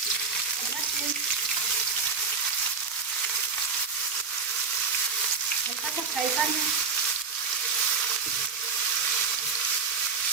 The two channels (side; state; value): left; quieter; 5.1 dB